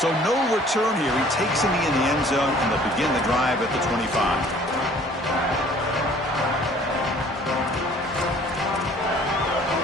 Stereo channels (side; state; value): both; normal; correlation 0.54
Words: So no return here. He takes it in the end zone, and they'll begin the drive at the 25.